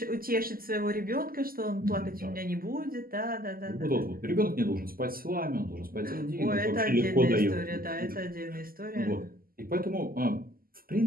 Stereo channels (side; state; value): left; late; 0.42 ms